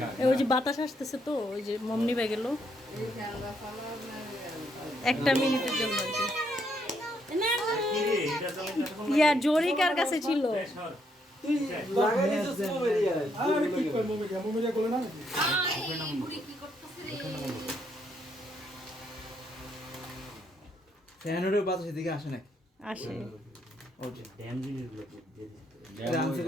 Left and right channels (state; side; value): normal; both; correlation 0.74